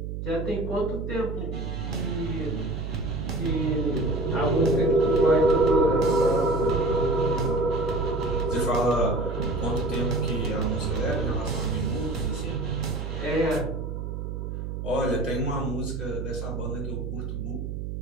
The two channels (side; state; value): right; noise; hum, 5 dB below the sound